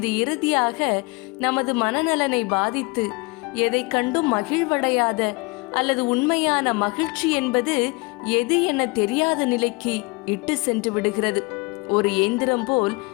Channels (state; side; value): quieter; right; 27.2 dB